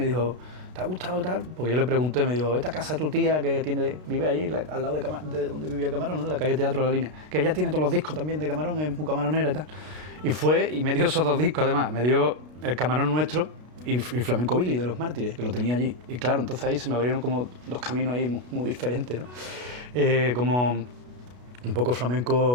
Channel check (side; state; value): left; late; 33 ms